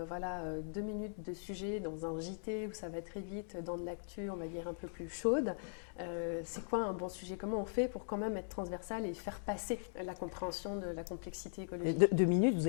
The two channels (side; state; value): right; silent; digital silence